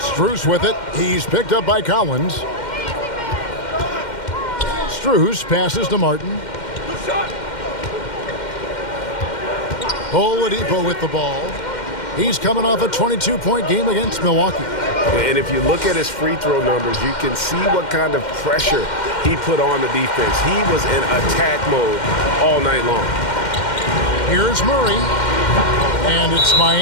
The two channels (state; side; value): late; right; 2.1 ms